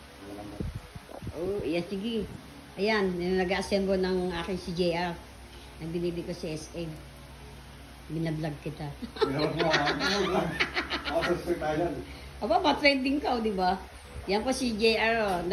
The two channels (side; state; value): both; identical; correlation 1.00